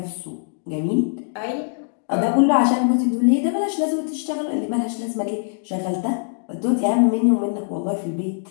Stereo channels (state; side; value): silent; right; digital silence